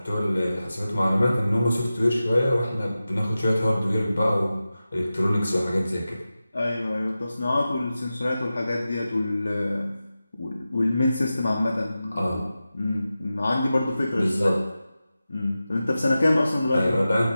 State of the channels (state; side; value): inverted; both; correlation -0.94